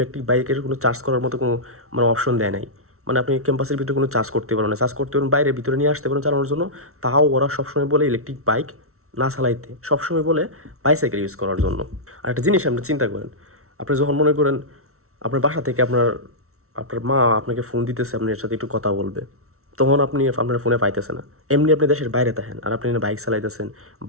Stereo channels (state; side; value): late; left; 0.63 ms